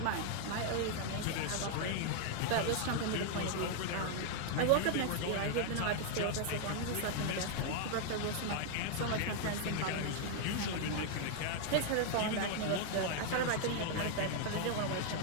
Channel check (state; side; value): different; both; correlation 0.00